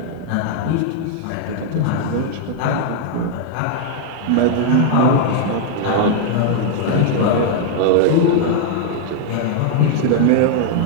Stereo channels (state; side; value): different; both; correlation 0.00